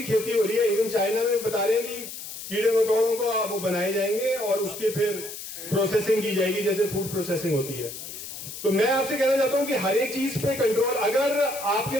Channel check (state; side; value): noise; left; hiss, 10 dB below the sound